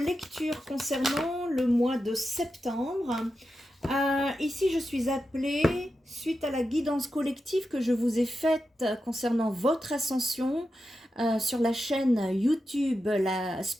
concernant le mois de septembre. Ici, je suis appelée, suite à la guidance collective que je vous ai faite concernant votre ascension sur la chaîne YouTube La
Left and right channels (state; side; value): normal; both; correlation 0.90